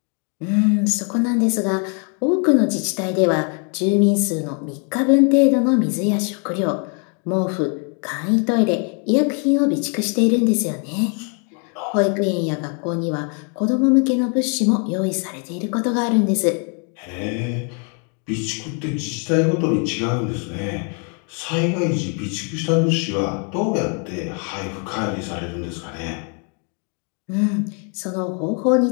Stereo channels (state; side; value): quieter; right; 39.1 dB